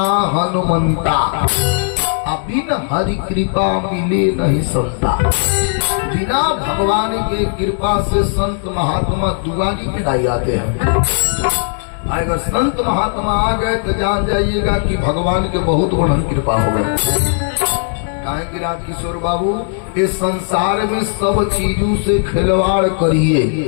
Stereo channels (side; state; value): right; silent; 66 dB below the other